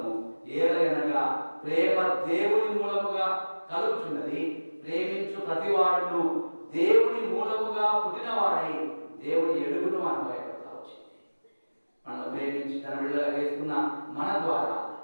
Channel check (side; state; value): both; inverted; correlation -1.00